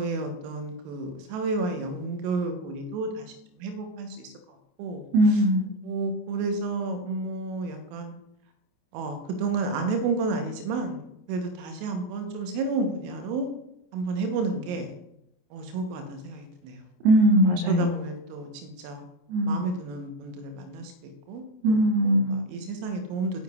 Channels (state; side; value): late; left; 28 ms